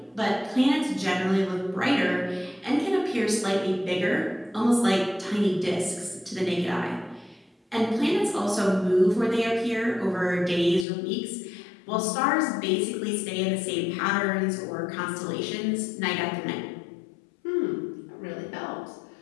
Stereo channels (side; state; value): right; drops out; at 10.9 s